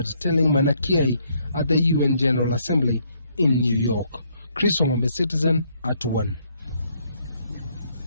telling Maina Kiai at the UN General Assembly in New York. Chris Omome, Citizen, at 1.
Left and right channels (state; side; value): inverted; both; correlation -0.70